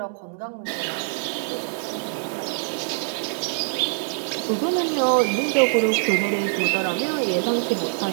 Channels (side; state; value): left; silent; 62 dB below the other